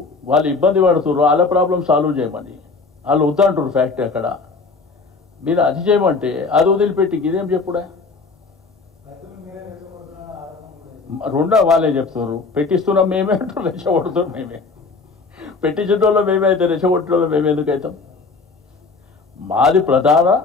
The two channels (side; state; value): right; quieter; 4.2 dB